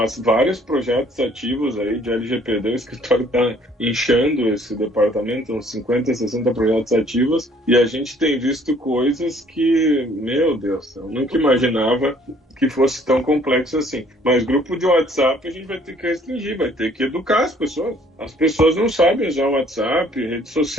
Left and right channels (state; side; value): normal; both; correlation 0.59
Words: vários projetos ativos aí de LGPD, o escritório está inchando esse departamento, uns 50, 60 projetos ativos, e a gente tem visto coisas que, meu Deus, eu nunca imaginava que fosse tão complexo assim. Mas grupo de WhatsApp a gente vai ter que restringir, vai ter que educar as pessoas. As pessoas não sabem usar o WhatsApp, rede